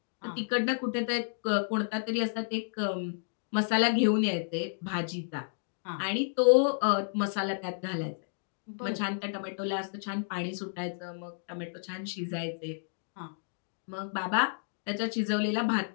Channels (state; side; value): silent; right; digital silence